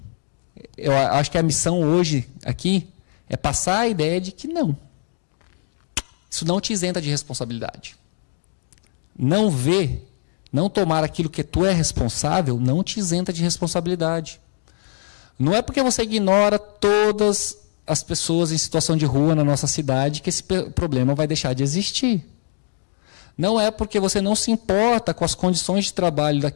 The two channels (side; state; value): right; silent; digital silence